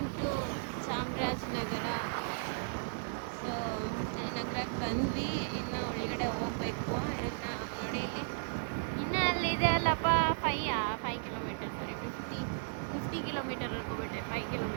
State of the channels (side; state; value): left; silent; digital silence